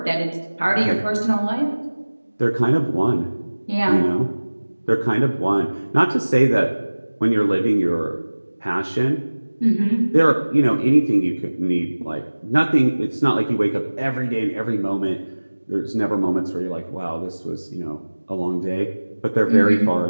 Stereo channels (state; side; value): inverted; both; correlation -1.00